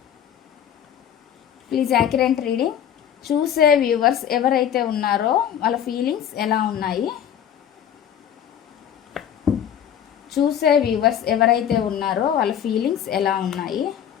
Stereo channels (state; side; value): quieter; right; 9.5 dB